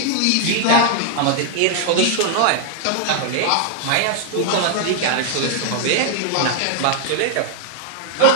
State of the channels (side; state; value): both; different; correlation 0.00